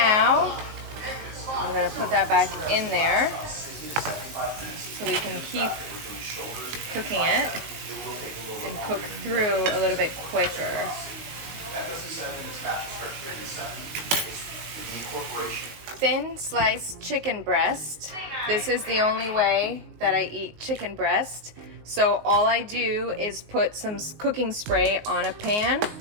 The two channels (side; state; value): left; late; 19 ms